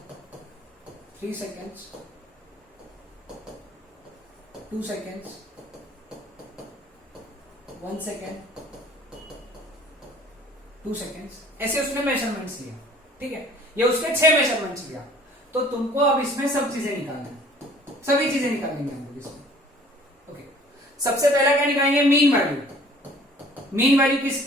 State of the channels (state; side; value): normal; both; correlation 0.53